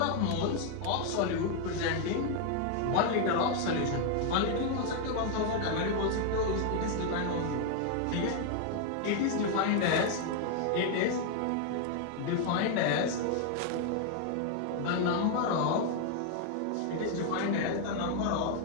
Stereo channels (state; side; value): different; both; correlation 0.00